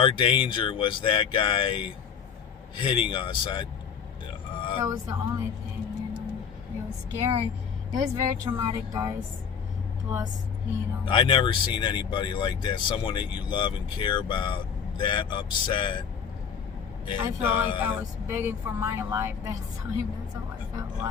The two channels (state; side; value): quieter; right; 7.0 dB